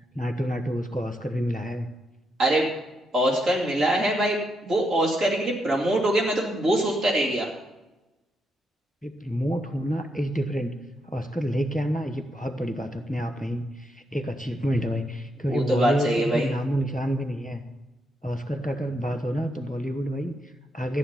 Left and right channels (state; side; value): normal; both; correlation 0.80